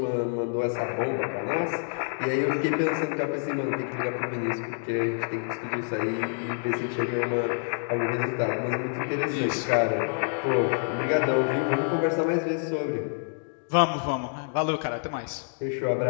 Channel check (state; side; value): silent; right; 60 dB below the other